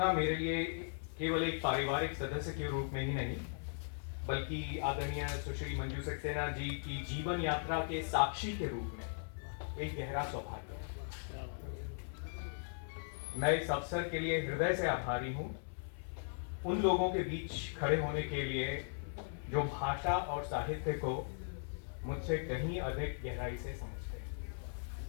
मेरे लिए केवल एक पारिवारिक सदस्य के रूप में ही नहीं, बल्कि आदरणीय सुश्री मंजू सक्सेना जी की जीवन यात्रा के साक्षी के रूप में एक गहरा सौभाग्य है। मैं इस अवसर के लिए हृदय से आभारी हूं उन लोगों के बीच खड़े होने के लिए जो भाषा और साहित्य को मुझसे कहीं अधिक गहराई से समझते हैं।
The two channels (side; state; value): right; silent; 52 dB below the other